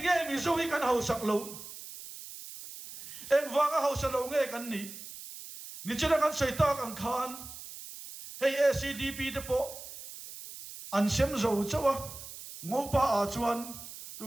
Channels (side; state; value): right; noise; hiss, 13 dB below the sound